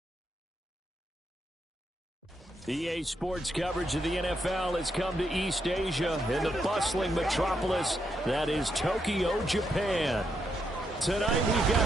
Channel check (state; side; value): normal; both; correlation 0.80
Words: EA Sports coverage of the NFL has come to East Asia in the bustling metropolis that is Tokyo, Japan. Tonight we've